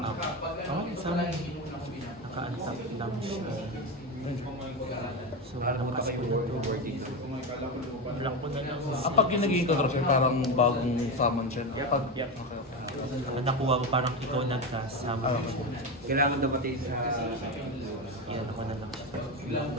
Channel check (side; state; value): both; normal; correlation 0.17